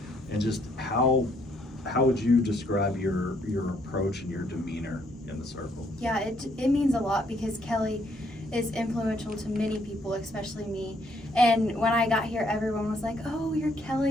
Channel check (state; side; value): normal; both; correlation 0.69